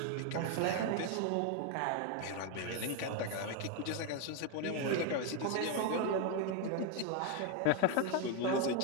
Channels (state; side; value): different; both; correlation 0.01